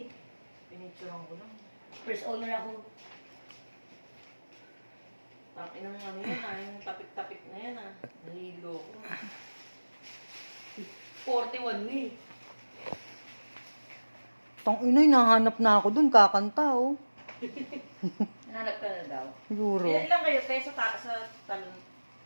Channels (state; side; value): inverted; both; correlation -1.00